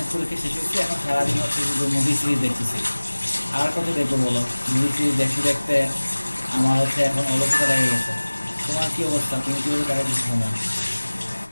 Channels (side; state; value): both; inverted; correlation -1.00